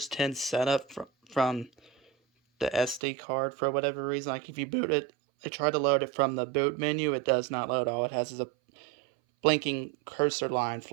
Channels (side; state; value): left; drops out; at 3.0 s